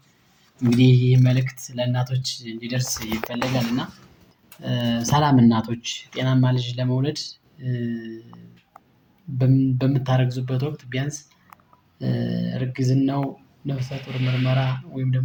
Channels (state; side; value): identical; both; correlation 1.00